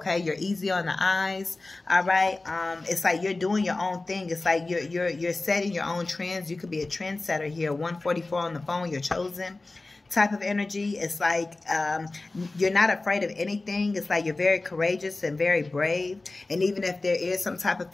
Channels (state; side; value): quieter; right; 3.2 dB